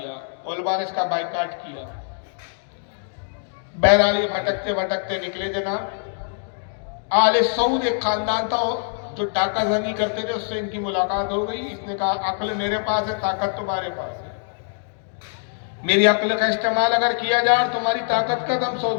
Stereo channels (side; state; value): right; silent; digital silence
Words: علماء نے اس کا بائیکاٹ کیا. بہرحال یہ بھٹکتے بھٹکتے نکلے جناب. آل سعود ایک خاندان تھا جو ڈاکہ زنی کرتے تھے، اس سے ان کی ملاقات ہو گئی. اس نے کہا عقل میرے پاس ہے، طاقت تمہارے پاس ہے. میری عقل کا استعمال اگر کیا جائے اور تمہاری طاقت کا، تو ہم